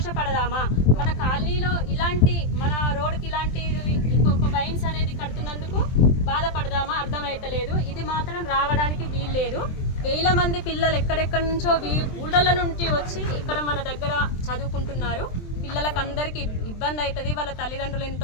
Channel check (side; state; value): right; late; 23 ms